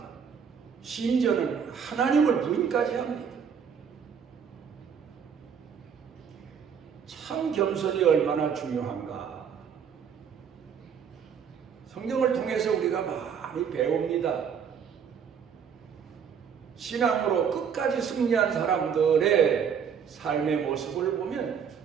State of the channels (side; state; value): left; quieter; 7.2 dB